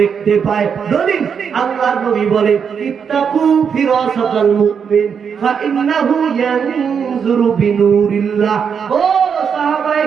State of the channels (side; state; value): left; quieter; 6.8 dB